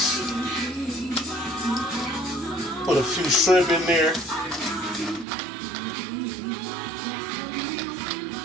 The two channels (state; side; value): drops out; left; at 5.2 s